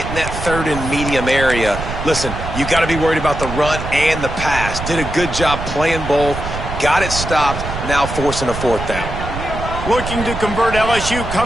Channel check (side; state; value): right; noise; rumble, 7 dB below the sound